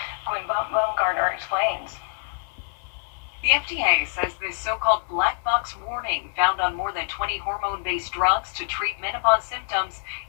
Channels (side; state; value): right; silent; digital silence